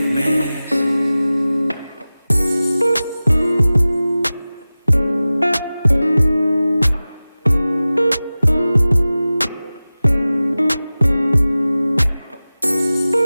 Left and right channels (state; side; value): inverted; both; correlation -0.97